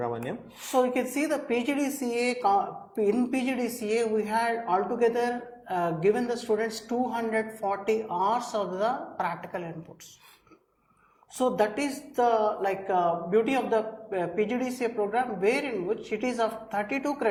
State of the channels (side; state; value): both; identical; correlation 1.00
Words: So you can see the PGDCA, in PGDCA we had altogether given the students 240 hours of the practical inputs. So that is the beauty of the PGDCA program, wherein which it is of 32